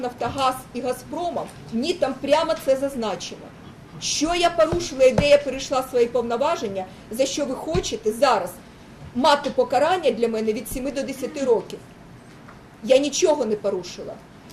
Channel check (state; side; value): identical; both; correlation 1.00